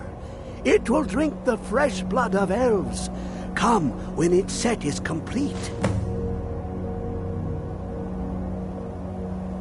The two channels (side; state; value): both; identical; correlation 1.00